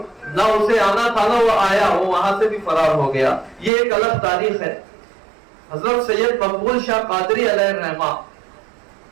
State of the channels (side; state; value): left; drops out; at 3.7 s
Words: نہ اسے آنا تھا نہ وہ آیا، وہ وہاں سے بھی فرار ہو گیا. یہ ایک الگ تاریخ ہے. حضرت سید مقبول شاہ قادری علیہ الرحمہ،